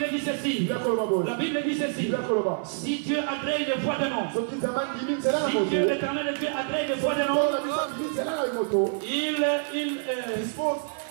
dit ceci. La Bible dit ceci. Si Dieu agrée une voix de nom, si Dieu l'éternel Dieu agrée une voix de nom,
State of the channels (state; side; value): silent; left; 60 dB below the other